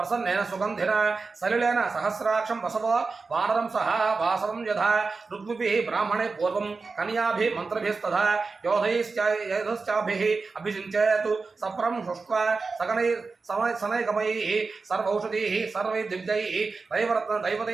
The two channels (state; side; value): quieter; left; 4.3 dB